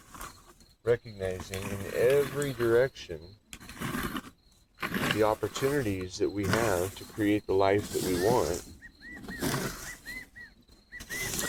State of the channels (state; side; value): identical; both; correlation 1.00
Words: recognizing in every direction the opportunities that we have to create the life that we want,